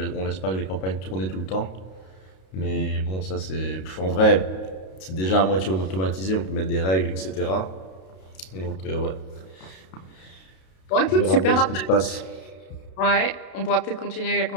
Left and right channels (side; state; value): right; late; 32 ms